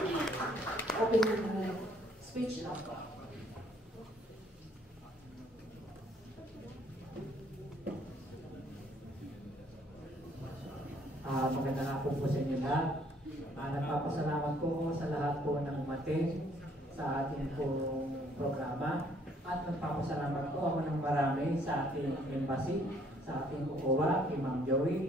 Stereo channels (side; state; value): both; normal; correlation 0.64